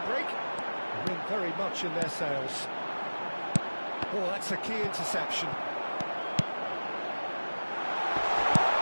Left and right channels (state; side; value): inverted; both; correlation -1.00